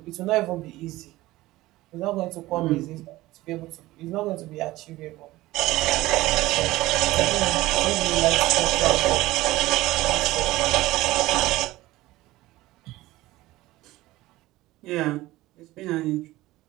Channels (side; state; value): left; quieter; 17.8 dB